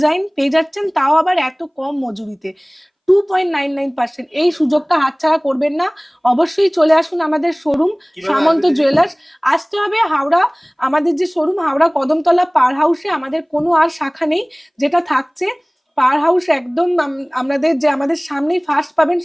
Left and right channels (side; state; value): both; identical; correlation 1.00